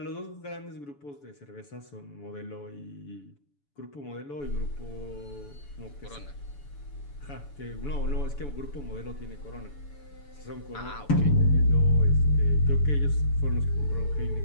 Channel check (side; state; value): right; late; 7.0 ms